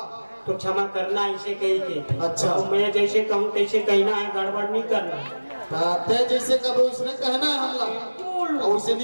तो क्षमा करना इसे कही के अच्छा। तो मैं जैसे कहूँ तैसे कहना है गड़बड़ नहीं करना ते जैसे कब उसने कहना है हमला और उसे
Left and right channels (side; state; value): both; inverted; correlation -1.00